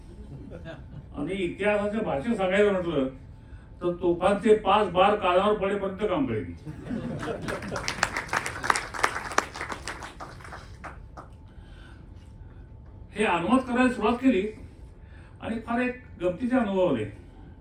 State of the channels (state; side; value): identical; both; correlation 1.00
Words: आणि इतिहासाच्या भाषेत सांगायचं म्हटलं तर तोफांचे 5 बार कानावर पडेपर्यंत काम करेन. हे अनुवाद करायला सुरुवात केली आणि फार एक गमतीचे अनुभव आले.